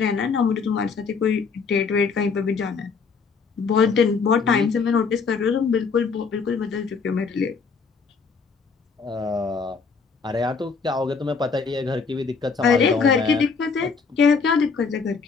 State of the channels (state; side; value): quieter; right; 5.2 dB